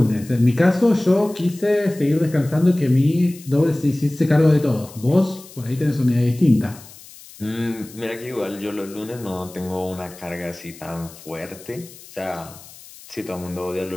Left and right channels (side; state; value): left; noise; hiss, 20 dB below the sound